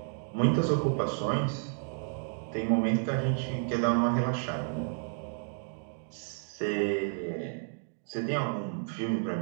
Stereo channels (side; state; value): left; silent; digital silence